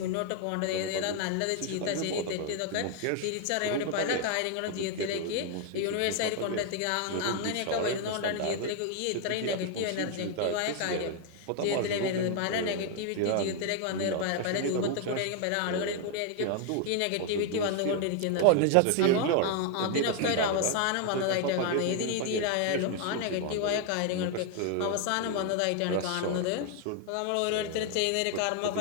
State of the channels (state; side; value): different; both; correlation 0.00